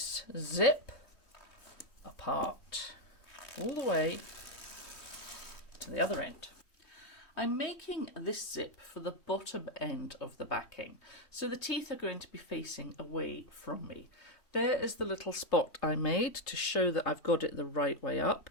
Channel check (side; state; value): right; late; 3.2 ms